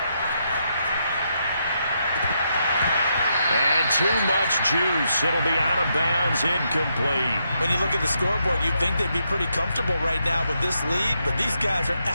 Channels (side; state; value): both; inverted; correlation -0.80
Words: And too much juice. It'll be out of bounds, incomplete. When you look at the scoreboard, you'd think they'd be pretty comfortable right now with this lead, but these guys are